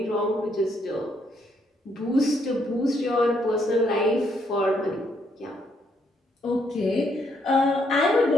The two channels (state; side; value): normal; both; correlation 0.73